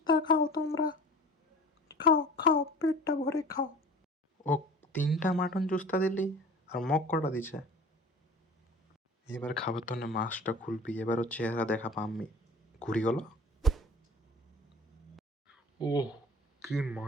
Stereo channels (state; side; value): normal; both; correlation 0.41